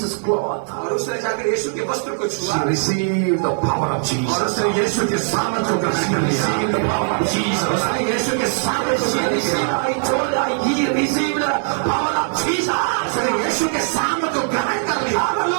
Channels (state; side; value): silent; left; 66 dB below the other